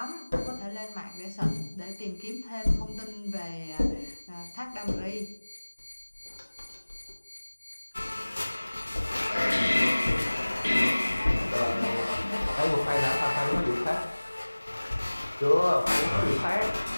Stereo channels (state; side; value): inverted; both; correlation -1.00